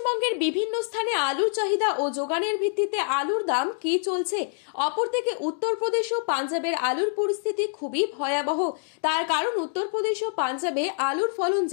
বিভিন্ন স্থানে আলুর চাহিদা ও যোগানের ভিত্তিতে আলুর দাম কি চলছে। অপরদিকে উত্তরপ্রদেশ ও পাঞ্জাবের আলুর পরিস্থিতি খুবই ভয়াবহ। তার কারণ উত্তরপ্রদেশ ও পাঞ্জাবে আলুর ফলন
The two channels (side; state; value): right; silent; digital silence